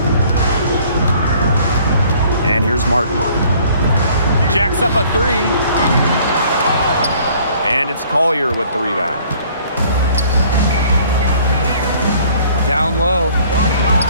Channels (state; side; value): inverted; both; correlation -0.56